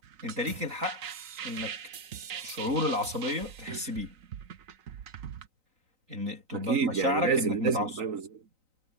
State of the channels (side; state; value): left; late; 3.9 ms